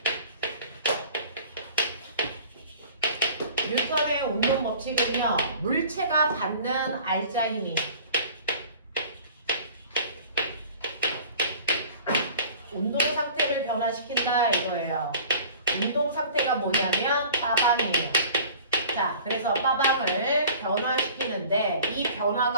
뉴턴의 운동 법칙은요, 물체가 받는 알자 힘이 운동 상태를 변화시킨다 이거예요. 운동 상태가 뭐냐면 빠방이에요. 자, 그래서 빠방을 변화시키는데 이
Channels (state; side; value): inverted; both; correlation -0.47